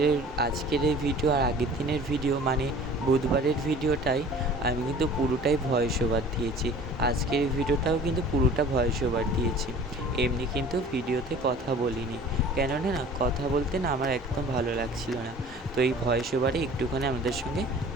এই ভিডিও আর আগের দিনের ভিডিও, মানে বুধবারের ভিডিওটাই আমি কিন্তু পুরোটাই ভয়েস ওভার দিয়েছি। আজকের এই ভিডিওটাও কিন্তু পুরোটা ভয়েস ওভার দিয়েছি, এমনি কিন্তু ভিডিওতে কথা বলিনি। কেননা না কথা বলতে না আমার একদম ভালো লাগছিল না। তো এই ভয়েস ওভারে একটুখানি আমাদের সঙ্গে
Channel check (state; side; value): normal; both; correlation 0.46